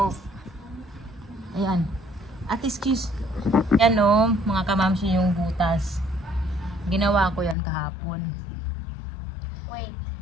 Ayan. At excuse. Yan o, mga kamamshi, yung butas. Ginawa ko yan kahapon. Wait.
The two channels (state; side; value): drops out; right; at 7.6 s